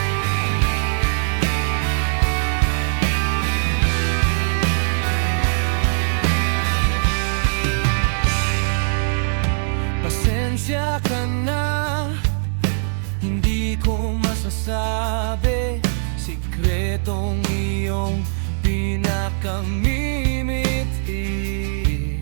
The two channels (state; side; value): silent; left; 65 dB below the other